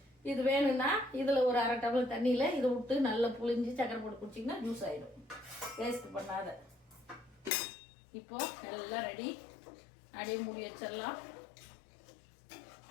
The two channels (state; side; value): drops out; right; at 7.5 s